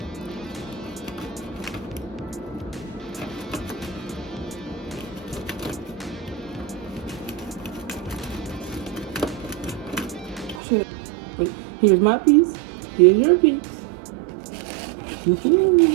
Here's my piece. Here's your piece.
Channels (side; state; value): left; drops out; at 10.6 s